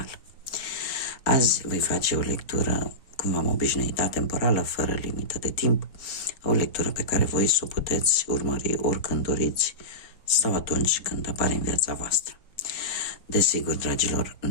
Azi voi face o lectură, cum v-am obișnuit, atemporală, fără limită de timp, o lectură pe care voi să o puteți urmări oricând doriți sau atunci când apare în viața voastră. Desigur, dragilor,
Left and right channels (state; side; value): late; right; 3.9 ms